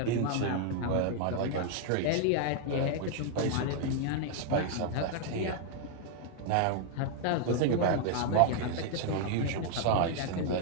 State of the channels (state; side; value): different; both; correlation 0.00